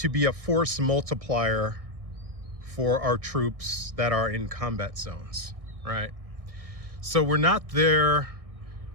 be a force multiplier for our troops that are in combat zones, right? So we're not there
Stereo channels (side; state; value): left; late; 1.6 ms